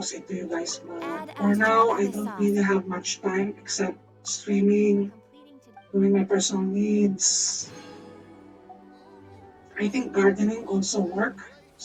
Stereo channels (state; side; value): identical; both; correlation 1.00